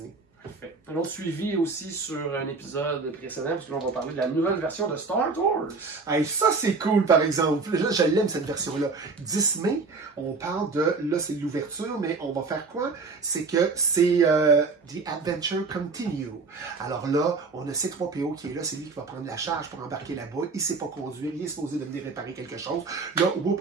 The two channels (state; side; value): quieter; left; 4.2 dB